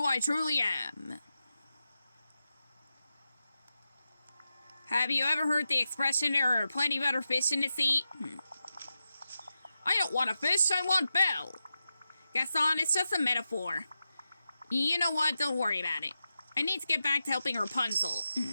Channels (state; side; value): inverted; both; correlation -0.89